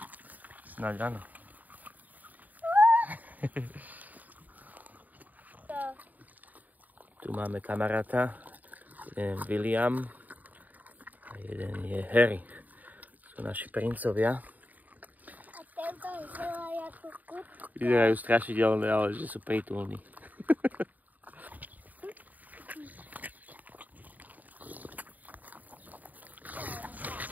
Snáď áno. Tu máme kamaráta. Jeden je William a jeden je Harry. Sú naši princovia. A tento vyzerá ako kut. Vyzerajú strašidelné, ale že sú prítulní.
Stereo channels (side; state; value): left; late; 0.081 ms